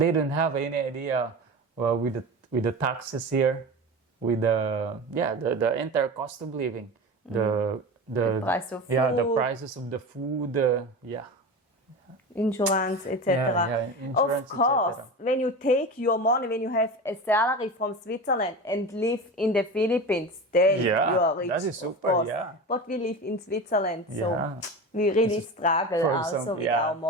don't have any idea with the taxes here, with the entire cost of living, the price of the food. prices of the food, Insurance, etc. insurance, Of course, etc. when you take your money, when you have a salary from Switzerland and live in the Philippines, then Yeah, you are rich. that is of super, course. yeah. But we live in Switzerland, so Yeah. we really struggle For also example, with yeah. our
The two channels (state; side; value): normal; both; correlation 0.28